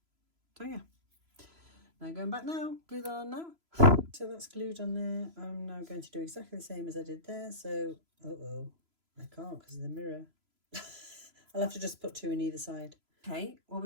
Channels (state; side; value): late; left; 3.0 ms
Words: So yeah, now going back now, glue that on now. So that's glued on there. I'm now going to do exactly the same as I did there. So, I can't because of the mirror. I'll have to just put 2 in either side. Okay, well,